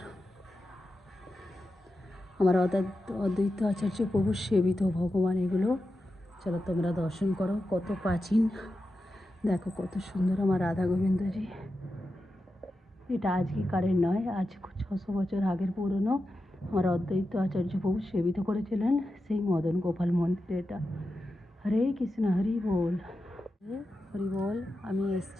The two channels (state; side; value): normal; both; correlation 0.90